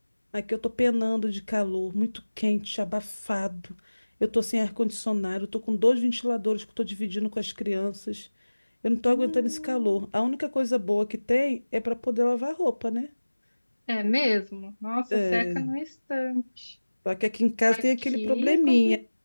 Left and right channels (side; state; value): both; inverted; correlation -1.00